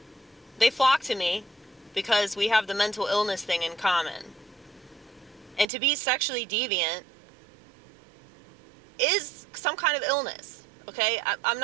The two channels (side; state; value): left; drops out; at 5.7 s